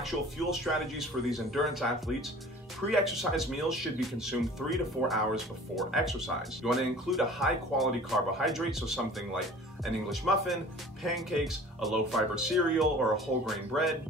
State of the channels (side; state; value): both; normal; correlation 0.45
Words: fuel strategies for these endurance athletes, pre-exercise meals should be consumed 3 to 4 hours before exercise. You want to include a high-quality carbohydrate, so something like an English muffin, pancakes, a low-fiber cereal, or a whole grain bread.